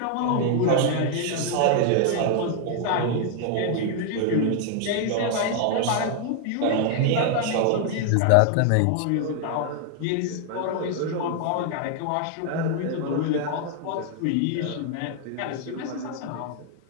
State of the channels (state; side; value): different; both; correlation 0.00